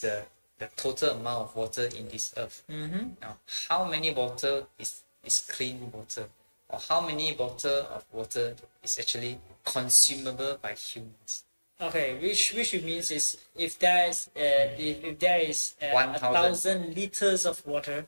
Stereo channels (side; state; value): both; inverted; correlation -1.00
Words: total amount of water in this earth. Now how many water is clean water, or how many bottle of water is actually consumable by humans? Okay, which means is if there is 1,000 liters of water,